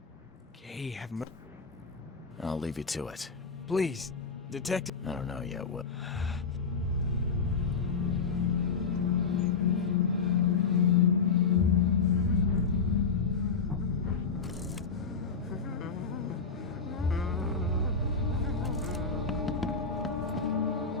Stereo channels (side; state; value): right; quieter; 5.1 dB